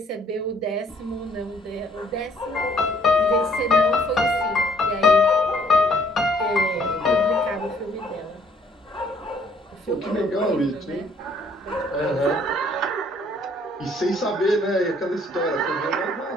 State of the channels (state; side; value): normal; both; correlation 0.63